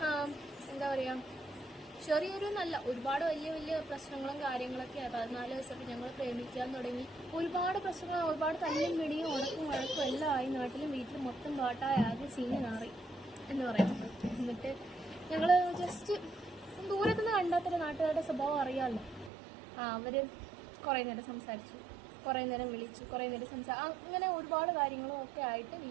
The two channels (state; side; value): drops out; left; at 19.3 s